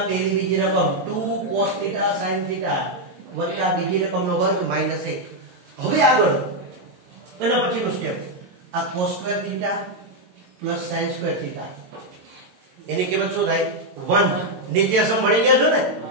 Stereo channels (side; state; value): left; late; 22 ms